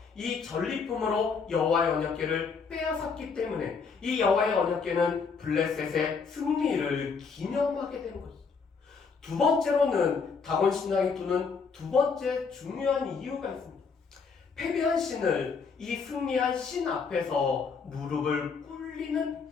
이 전리품으로 여호와의 언약궤를 빼앗았기 때문에 이 여호와의 언약궤는 블레셋의 승리를 기념하게 되는 것이죠. 두 번째로는 다곤 신당에 두는 두 번째 중요한 이유가 있습니다. 패배한 신을 이 승리한 신 앞에서 무릎을 꿇리는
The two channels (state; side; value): quieter; right; 5.3 dB